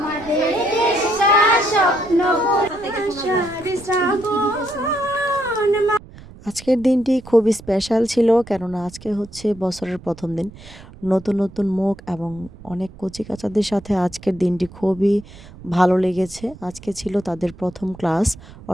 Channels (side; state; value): right; noise; rumble, 19 dB below the sound